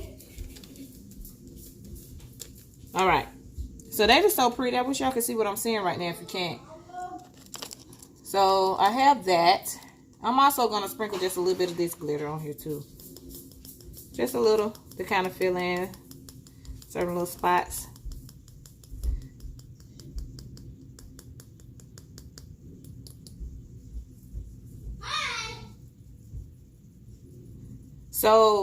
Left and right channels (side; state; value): both; identical; correlation 1.00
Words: All right, so that is so pretty. I wish y'all could see what I'm seeing right now if you can't. So I have that. I'm also going to sprinkle just a little bit of this glitter on here too. Just a little to kind of fill in certain little spots.